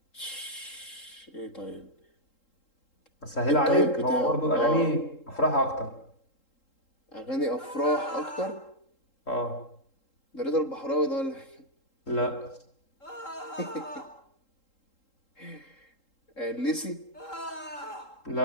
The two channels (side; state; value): right; late; 3.8 ms